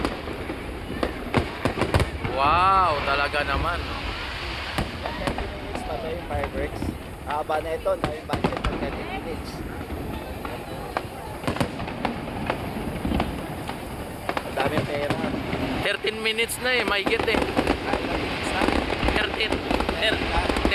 Wow, talaga naman. 30 minutes pa tayo yung fireworks. Haba na ito, na yung budget ng 30 minutes. Ang daming pera. 13 minutes na eh, may get eh. Ilang minutes na?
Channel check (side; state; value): both; identical; correlation 1.00